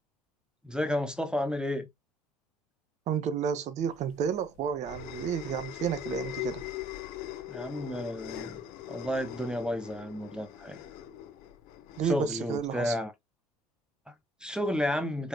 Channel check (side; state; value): both; normal; correlation 0.63